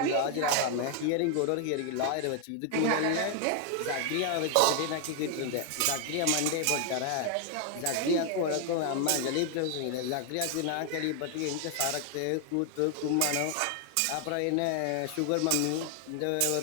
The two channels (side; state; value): both; different; correlation 0.00